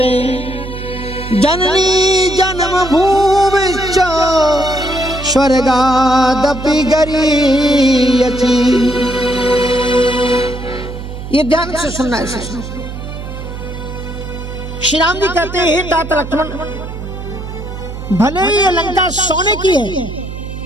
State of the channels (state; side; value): noise; right; hum, 9 dB below the sound